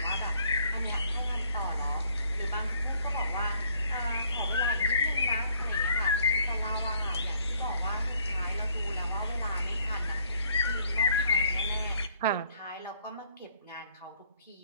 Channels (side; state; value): both; inverted; correlation -0.64